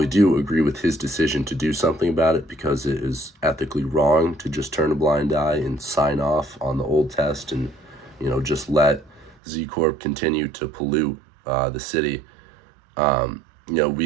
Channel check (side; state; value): left; drops out; at 9.3 s